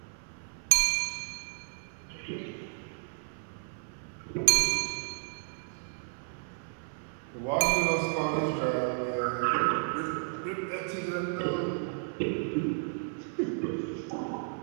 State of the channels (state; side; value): silent; left; 56 dB below the other